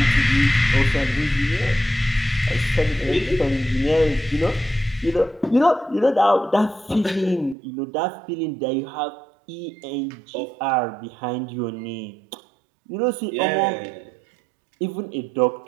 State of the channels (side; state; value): left; drops out; at 7.6 s